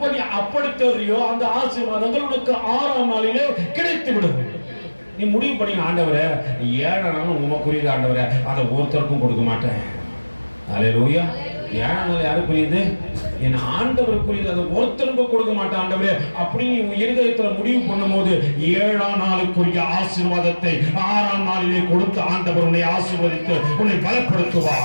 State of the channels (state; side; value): inverted; both; correlation -1.00